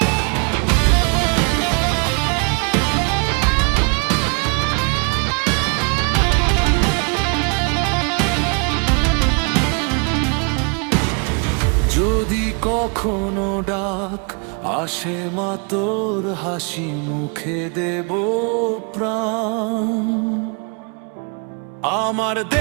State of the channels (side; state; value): left; quieter; 36.2 dB